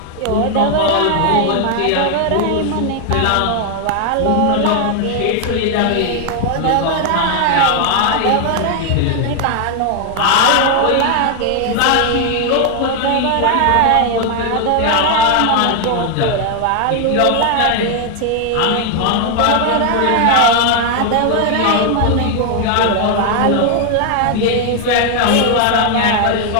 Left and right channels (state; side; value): different; both; correlation 0.00